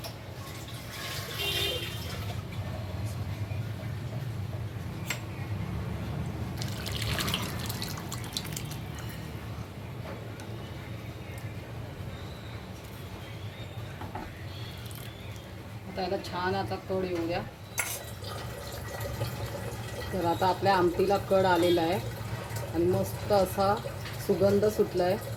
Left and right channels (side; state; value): both; identical; correlation 1.00